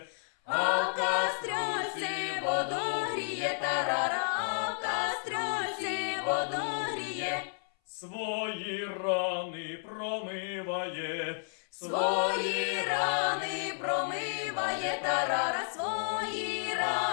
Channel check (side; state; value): right; silent; 57 dB below the other